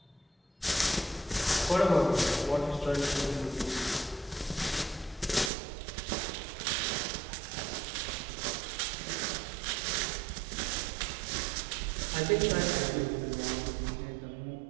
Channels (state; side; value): drops out; left; at 5.5 s